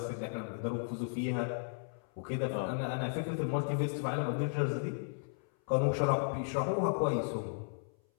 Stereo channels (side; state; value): right; silent; 54 dB below the other